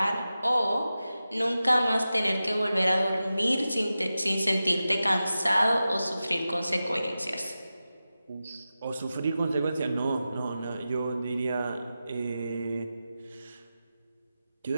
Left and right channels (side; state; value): both; inverted; correlation -0.93